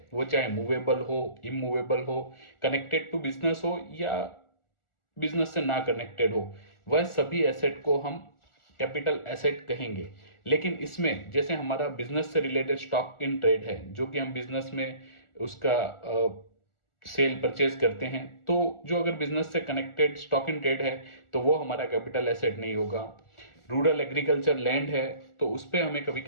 वो चाहे मूवेबल हो, इमूवेबल हो, कनेक्टेड टू बिजनेस हो या बिजनेस से ना कनेक्टेड हो, वह सभी एसेट को हम कैपिटल एसेट कहेंगे। लेकिन इसमें जैसे हमारा बिजनेस से रिलेटेड स्टॉक इन ट्रेड है, जो कि हम बिजनेस में उसका सेल परचेज करते हैं, तो जो अगर बिजनेस से कनेक्टेड स्टॉक इन ट्रेड है तो वो हमारा कैपिटल एसेट नहीं होगा। रूरल एग्रीकल्चर लैंड है तो उस पर हमें कभी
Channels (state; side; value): late; right; 1.4 ms